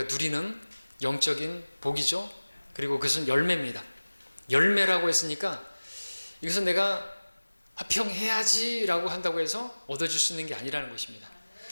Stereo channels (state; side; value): inverted; both; correlation -1.00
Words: 누리는 영적인 복이죠. 그리고 그것은 열매입니다. 열매라고 했으니까 이것은 내가 화평해야지 라고 한다고 해서 얻어줄 수 있는 게 아니라는 것입니다.